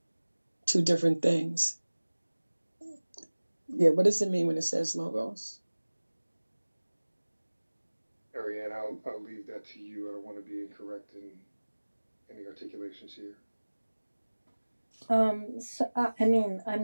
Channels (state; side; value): inverted; both; correlation -1.00